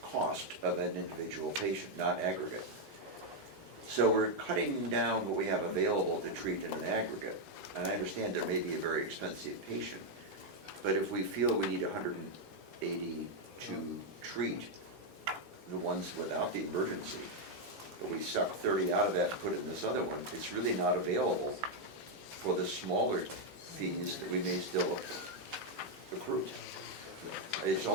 cost of an individual patient, not aggregate. So we're cutting down what we have available to treat in an aggregate. And I understand there may be a very expensive patient, but if we feel we need 180 to treat the ones without the emergency, but we suck 30 out of that and put it in this other one, it's really not available for the smaller fees that we may still accrue. It's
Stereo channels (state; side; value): normal; both; correlation 0.01